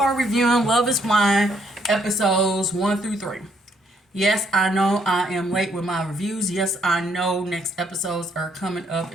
reviewing Love Is Blind episodes 1 through 3. Yes, I know I am late with my reviews. Yes, I know next episodes are coming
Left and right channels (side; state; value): both; normal; correlation 0.70